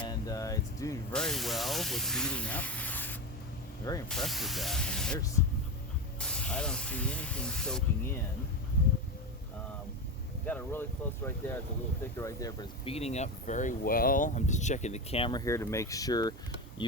it's doing very well with beating up. Very impressed with that. I mean, I don't see anything soaking in. Got it really close right there. It's a little thicker right there, but it's beating up very well. I'm just checking the camera here to make sure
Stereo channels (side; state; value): both; normal; correlation 0.19